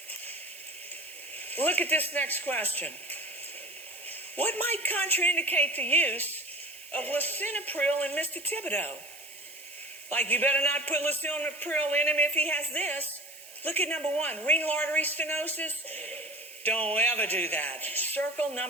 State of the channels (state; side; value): noise; right; hiss, 17 dB below the sound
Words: Look at this next question. What might contraindicate the use of lisinopril in Mr. Thibodeau? Like, you better not put lisinopril in him if he has this. Look at number 1, renal artery stenosis. Don't ever do that. Circle